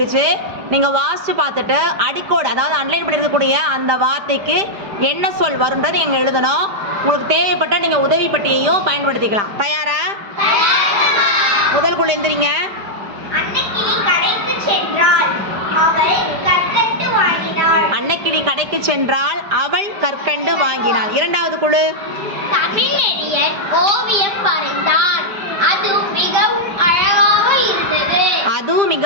நீங்கள் வாசித்து பார்த்துட்டு அடிக்கோடு, அதாவது அன்லைன் பண்ணியிருக்கக்கூடிய அந்த வார்த்தைக்கு என்ன சொல் வரும்ன்றது நீங்கள் எழுதணும். உங்களுக்கு தேவைப்பட்டால் நீங்கள் உதவி பட்டியையும் பயன்படுத்திக்கலாம். தயாரா? முதல் குழு எந்திரிங்க. அன்னக்கிளி கடைக்கு சென்றாள், அவள் கற்கண்டு வாங்கினாள். இரண்டாவது குழு. தமிழறிஞர் ஓவியம் வரைந்தார், அது மிகவும் அழகாக இருந்தது. அதுவும்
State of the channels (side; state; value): left; late; 5.0 ms